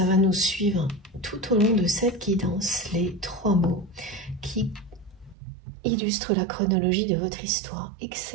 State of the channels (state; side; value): drops out; left; at 5.4 s